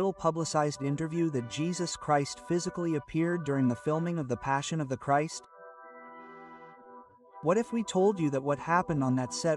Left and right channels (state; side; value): identical; both; correlation 1.00